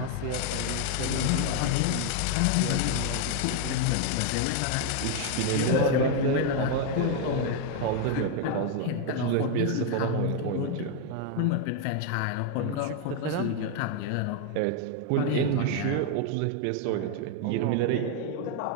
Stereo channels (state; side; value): different; both; correlation 0.01